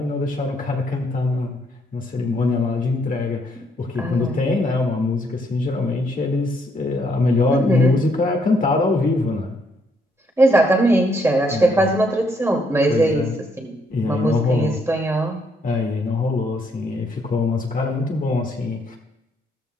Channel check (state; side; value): normal; both; correlation 0.71